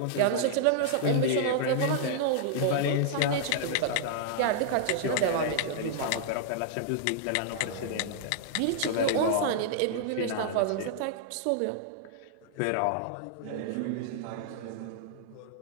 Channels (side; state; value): both; different; correlation -0.01